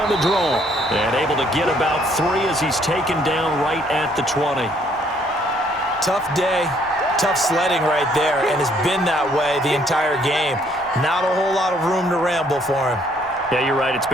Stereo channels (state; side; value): normal; both; correlation 0.65